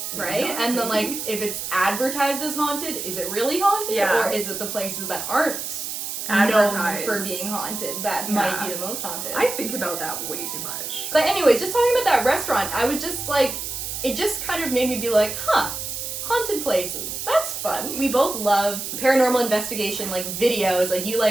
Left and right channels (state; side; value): noise; right; hiss, 5 dB below the sound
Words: Right? And then, like, if it's advertised as haunted, is it really haunted? Yeah. Or is it the places that aren't Advertised. known for being haunted that might be the most haunted? I think about that way too much. But anyways, just talking about that restaurant, I was just like, it just kind of made me be like, huh, haunted places. That's fun. We both love paranormal investigation, like, videos. Like, you